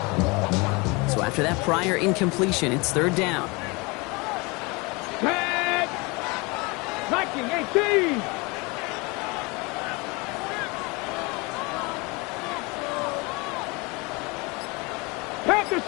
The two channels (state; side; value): quieter; right; 26.9 dB